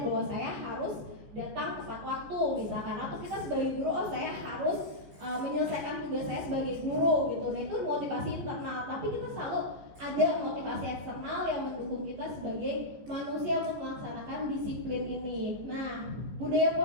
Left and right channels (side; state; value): left; late; 15 ms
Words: bahwa saya harus datang tepat waktu misalkan, atau kita sebagai guru, oh saya harus menyelesaikan tugas saya sebagai guru gitu. Nah, itu motivasi internal, tapi kita selalu ada motivasi eksternal yang mendukung kita sebagai manusia untuk melaksanakan disiplin ini. Nah, budaya